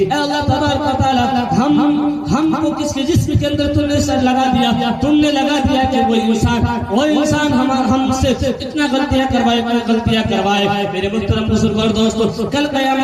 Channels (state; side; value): identical; both; correlation 1.00